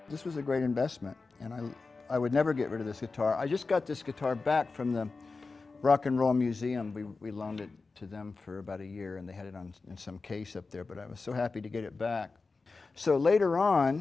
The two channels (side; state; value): right; quieter; 4.0 dB